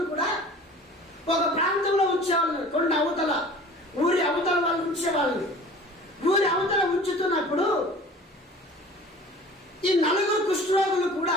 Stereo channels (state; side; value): normal; both; correlation 0.44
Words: కూడా ఒక ప్రాంతంలో ఉంచేవాళ్ళని, కొన్ని అవతల ఊరి అవతల వాళ్ళు ఉంచేవాళ్ళని. ఊరి అవతల ఉంచుతున్నప్పుడు ఈ 4 కుష్ఠరోగులు